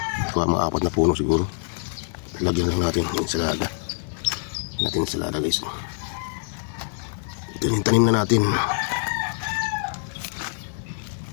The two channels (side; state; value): right; silent; digital silence